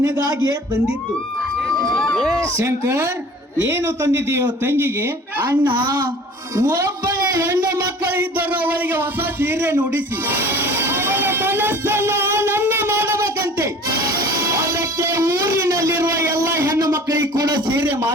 ತಂದಿದ್ದು. ಶಂಕರ್, ಏನು ತಂದಿದ್ದೀಯೋ ತಂಗಿಗೆ? ಅಣ್ಣ, ಒಬ್ಬಳ ಹೆಣ್ಣು ಮಕ್ಕಳು ಇದ್ದರು, ಅವಳಿಗೆ ಹೊಸ ಸೀರೆ ನುಡಿಸಿ ಅವಳ ಮನಸ್ಸನ್ನು ಆನಂದ ಮಾಡಬೇಕಂತೆ. ಅದಕ್ಕೆ ಊರಿನಲ್ಲಿರುವ ಎಲ್ಲ ಹೆಣ್ಣು ಮಕ್ಕಳಿಗೆ ಕೂಡ ಸೀರೆ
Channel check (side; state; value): both; normal; correlation 0.45